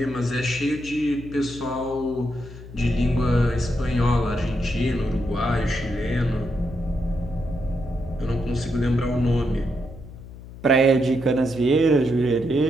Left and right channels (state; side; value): noise; left; hum, 15 dB below the sound